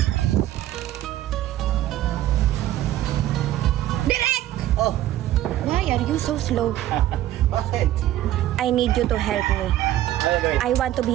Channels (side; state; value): left; quieter; 13.7 dB